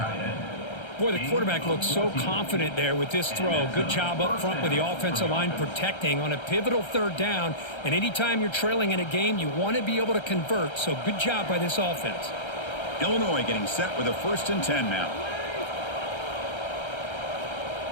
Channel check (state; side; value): late; right; 1.3 ms